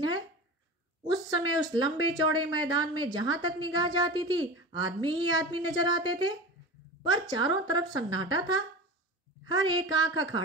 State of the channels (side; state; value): both; normal; correlation 0.31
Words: है। उस समय उस लंबे चौड़े मैदान में जहां तक निगाह जाती थी आदमी ही आदमी नजर आते थे, पर चारों तरफ सन्नाटा था। हर एक आंख